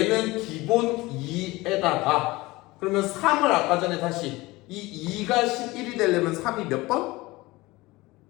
기본 2에다가 그러면 3을 아까 전에 다시 이 2가 11이 되려면 3이 몇 번?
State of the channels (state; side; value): quieter; right; 20.8 dB